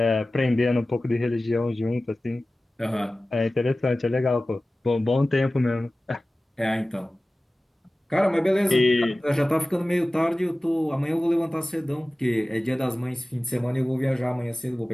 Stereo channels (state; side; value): normal; both; correlation 0.97